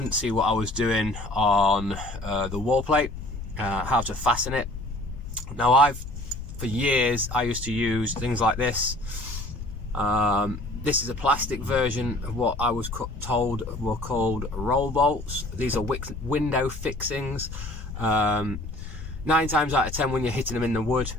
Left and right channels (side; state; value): left; noise; rumble, 9 dB below the sound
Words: see what I was doing on the wall plate, how to fasten it. Now for years I used to use things like this. This is a plastic version of what I was told were called roll bolts. These are window fixings. 9 times out of 10 when you're hitting them in the wood,